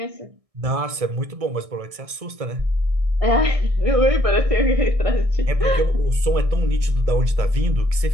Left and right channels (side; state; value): left; late; 1.6 ms